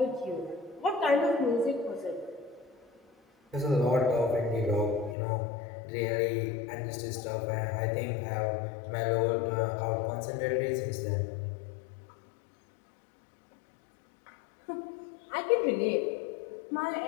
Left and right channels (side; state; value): right; drops out; at 5.2 s